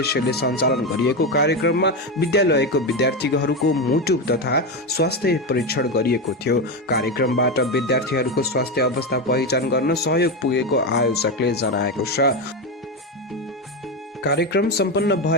सञ्चालन गरिएको कार्यक्रममा विद्यालयको विद्यार्थीहरूको मुटु तथा स्वास्थ्य परीक्षण गरिएको थियो। कार्यक्रमबाट विद्यार्थीहरूको स्वास्थ्य अवस्था पहिचान गर्न सहयोग पुगेको आयोजकले जनाएको छ। कार्यक्रम सम्पन्न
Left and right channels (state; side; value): normal; both; correlation 0.14